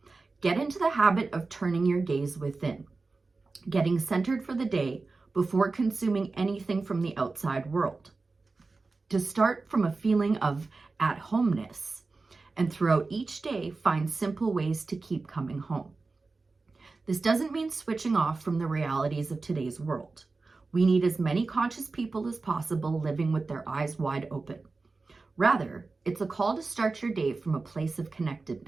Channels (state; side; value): quieter; left; 3.8 dB